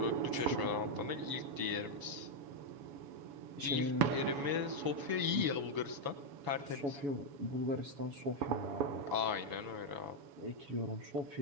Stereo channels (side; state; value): left; late; 7.1 ms